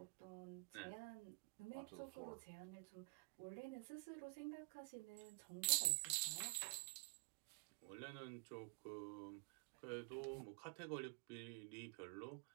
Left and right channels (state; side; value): quieter; left; 37.8 dB